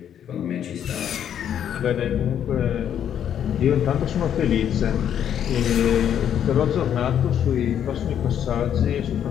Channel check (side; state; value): right; quieter; 9.5 dB